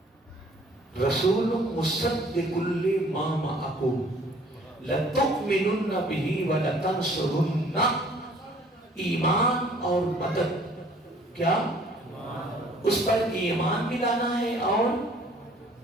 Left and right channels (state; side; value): normal; both; correlation 0.56